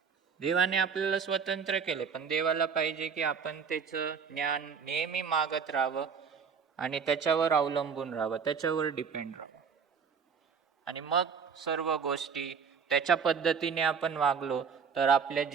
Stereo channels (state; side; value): quieter; left; 6.2 dB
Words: देवाने आपल्याला स्वतंत्र केले, पण देवाला पाहिजे की आपण त्याचं ज्ञान नेहमी मागत राहावं आणि त्याच्यावर अवलंबून राहावं, त्याच्यावर डिपेंड राहावं. आणि मग सर्व गोष्टी त्याच्या पद्धतीने आपण वागलो तर आपल्या